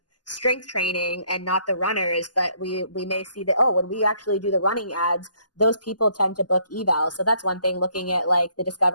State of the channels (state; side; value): late; right; 0.70 ms